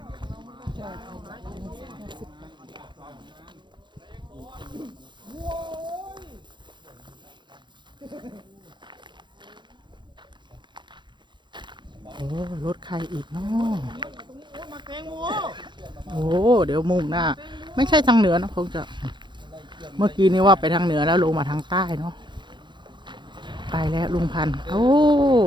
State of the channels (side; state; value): left; late; 0.22 ms